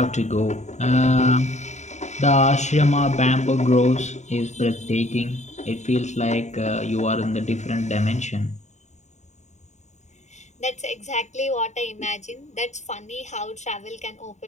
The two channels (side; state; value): right; late; 0.34 ms